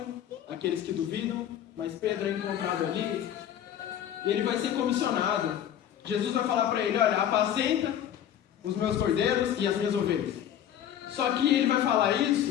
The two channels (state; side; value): quieter; right; 10.3 dB